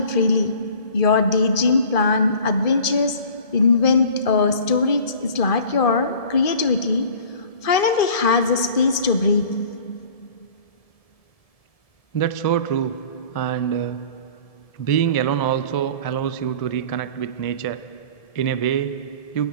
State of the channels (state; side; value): late; right; 1.7 ms